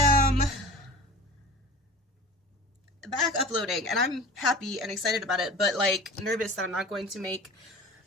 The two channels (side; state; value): both; normal; correlation 0.39